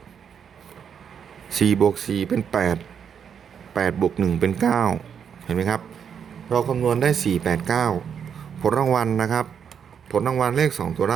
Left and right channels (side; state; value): left; quieter; 7.6 dB